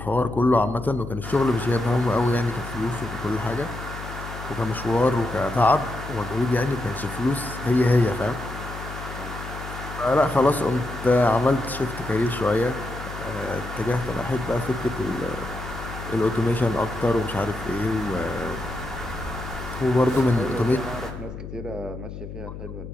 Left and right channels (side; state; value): left; noise; hum, 10 dB below the sound